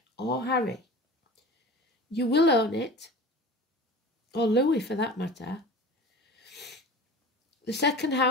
or Harry. You will own it, or Louis for that matter. The second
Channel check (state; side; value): normal; both; correlation 0.36